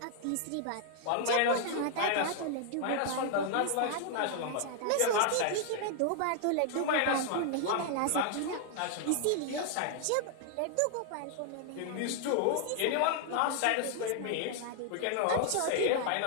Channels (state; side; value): different; both; correlation 0.00